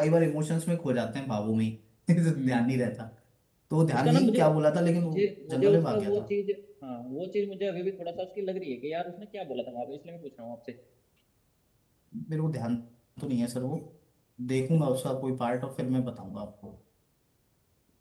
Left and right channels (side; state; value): both; identical; correlation 1.00